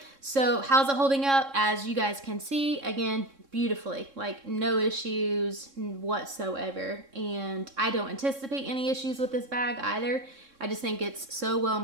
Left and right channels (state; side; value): late; left; 3.7 ms